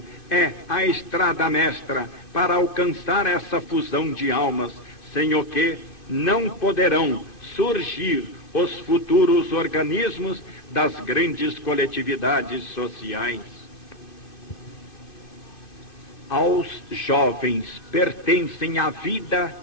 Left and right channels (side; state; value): right; late; 2.5 ms